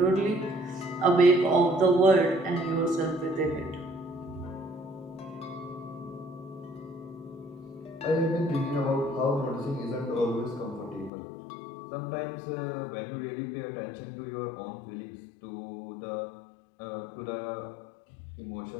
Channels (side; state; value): right; drops out; at 11.1 s